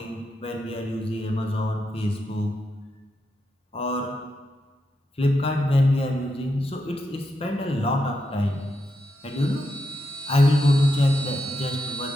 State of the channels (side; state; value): both; normal; correlation 0.84